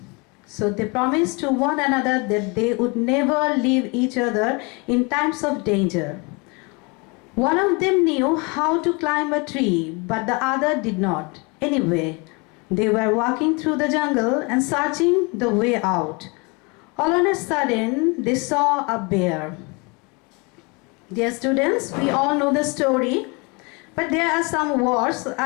So they promised to one another that they would never leave each other in times of danger. One of them knew how to climb a tree, but the other did not. Anyway, they were walking through the jungle and searching the way out. All on a sudden, they saw a bear. Dear students, we all know the story, but there are some words.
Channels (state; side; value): quieter; right; 29.6 dB